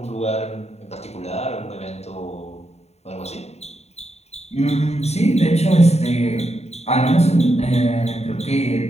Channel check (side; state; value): right; late; 0.31 ms